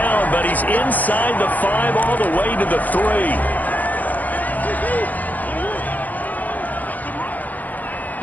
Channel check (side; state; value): right; late; 0.081 ms